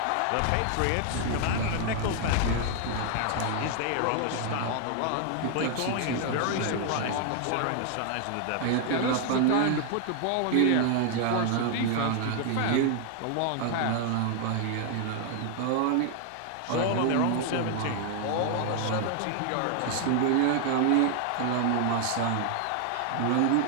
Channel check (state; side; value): different; both; correlation 0.00